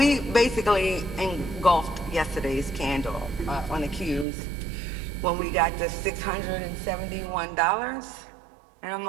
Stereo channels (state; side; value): drops out; left; at 4.2 s